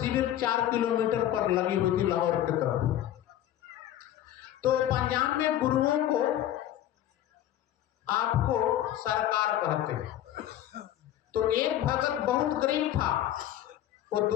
4 किलोमीटर पर लगी हुई थी लाहौर की तरफ। तो पंजाब में गुरुओं को आपको सरकार कहते हैं। तो एक भगत बहुत गरीब था, वो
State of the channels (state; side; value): quieter; right; 12.2 dB